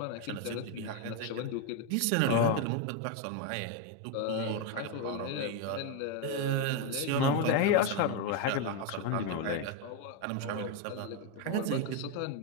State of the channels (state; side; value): different; both; correlation 0.02